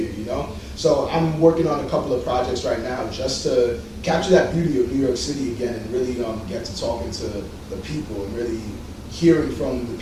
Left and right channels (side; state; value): both; identical; correlation 1.00